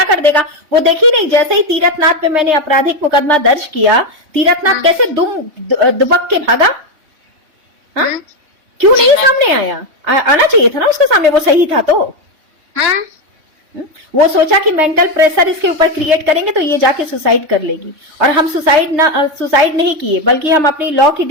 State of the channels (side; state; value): left; late; 3.3 ms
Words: कर देगा। वो देखी नहीं, जैसे ही तीरथनाथ पे मैंने आपराधिक मुकदमा दर्ज किया, तीरथनाथ कैसे दुबक के भागा। हाँ, क्यों नहीं सामने आया? आना चाहिए था ना उसके सामने, वो सही था तो। वो सोचा कि मेंटल प्रेशर इसके ऊपर क्रिएट करेंगे तो ये जाके सुसाइड कर लेगी, और हम सुसाइड नहीं किए, बल्कि हम अपनी लॉ की